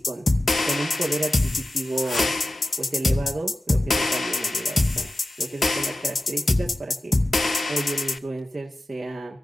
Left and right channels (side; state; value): both; normal; correlation 0.94